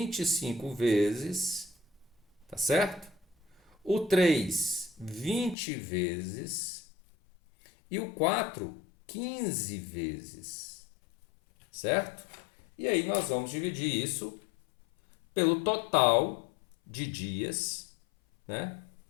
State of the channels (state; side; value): drops out; right; at 5.6 s